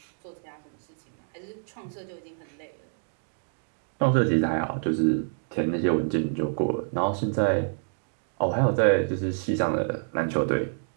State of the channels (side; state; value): left; silent; digital silence